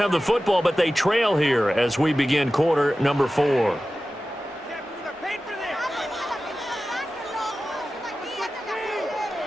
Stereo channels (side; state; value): both; normal; correlation 0.95